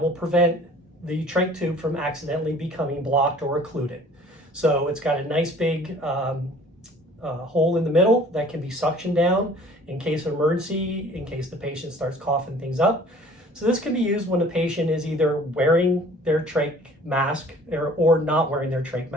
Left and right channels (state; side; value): normal; both; correlation 0.51